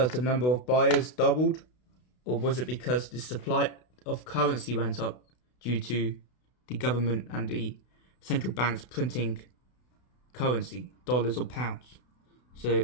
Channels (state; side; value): late; right; 32 ms